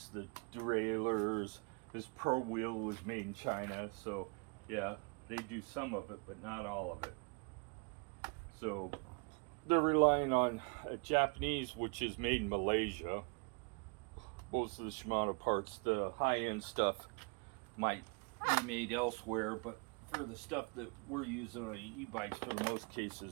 the derailleurs, this pro wheel was made in China, so yeah, they do some of it, but not all of it. So they're relying on Japanese, which is made in Malaysia. Most of the Shimano parts, the high-end stuff, might be made elsewhere, but for the stuff that we're using on e-bikes, for the most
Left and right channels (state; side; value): quieter; left; 32.8 dB